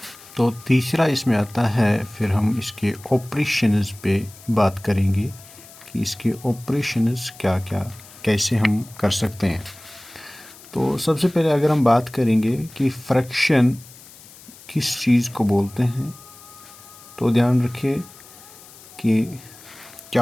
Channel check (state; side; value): noise; left; hiss, 21 dB below the sound